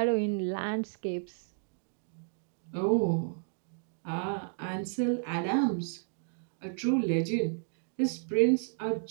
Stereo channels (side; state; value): left; silent; digital silence